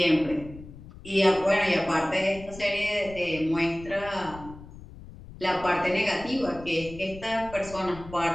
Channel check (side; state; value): left; noise; rumble, 16 dB below the sound